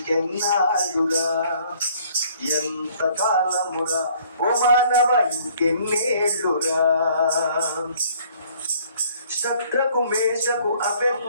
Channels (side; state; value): both; inverted; correlation -0.59